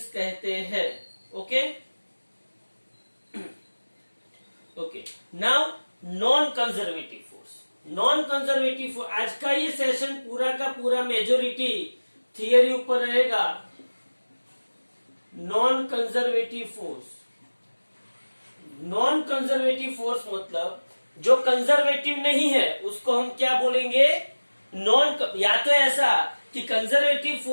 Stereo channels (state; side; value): inverted; both; correlation -1.00